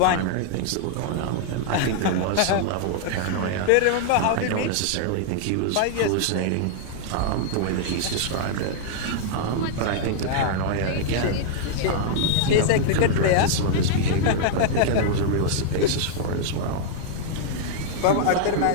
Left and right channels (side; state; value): both; different; correlation -0.01